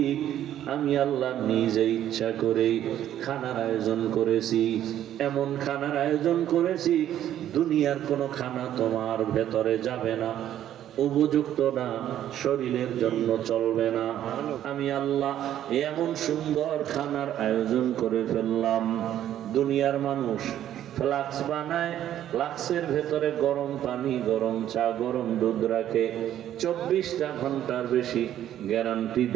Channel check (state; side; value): quieter; left; 11.4 dB